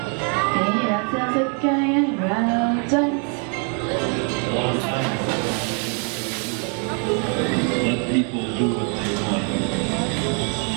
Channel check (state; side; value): quieter; left; 39.4 dB